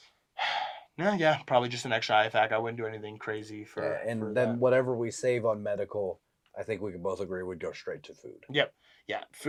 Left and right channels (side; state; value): both; identical; correlation 1.00